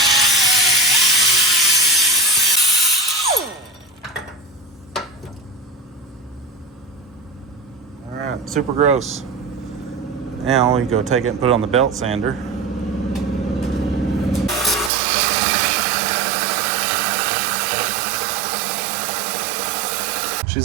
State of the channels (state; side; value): drops out; left; at 14.9 s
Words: All right, super gross. Now we go take it and put it on the belt sander.